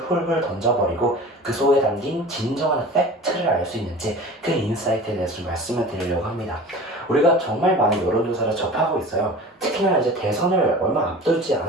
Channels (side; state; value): both; normal; correlation 0.39